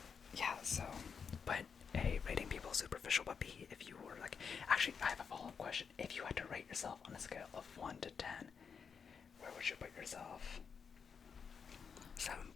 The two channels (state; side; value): quieter; right; 6.2 dB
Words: yeah, so, but A, rating people superficial, but B, if you were like, actually, I have a follow-up question. If you had to rate yourself on a scale of 1 to 10, where would you put yourself?